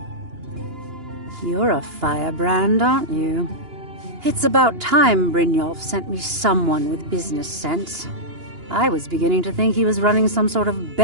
You're a firebrand, aren't you? It's about time Brynjolf sent me someone with business sense. I was beginning to think he was running some sort of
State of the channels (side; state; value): left; late; 2.9 ms